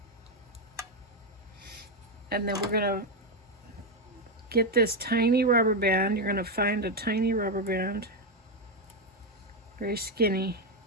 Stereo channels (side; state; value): both; normal; correlation 0.07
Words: And then we're gonna get this tiny rubber band. You're gonna find a tiny rubber band, very skinny,